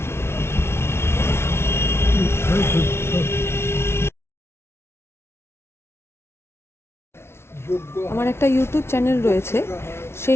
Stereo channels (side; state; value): right; late; 0.12 ms